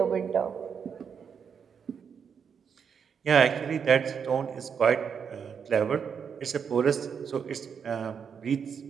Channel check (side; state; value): left; quieter; 6.9 dB